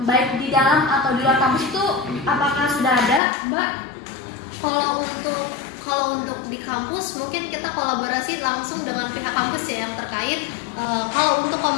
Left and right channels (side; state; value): right; drops out; at 3.2 s